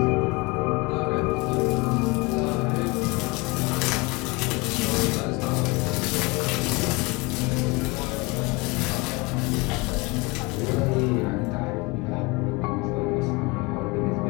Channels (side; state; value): right; quieter; 26.1 dB